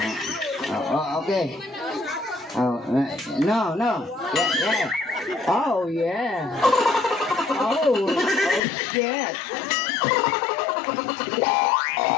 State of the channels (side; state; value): right; drops out; at 8.6 s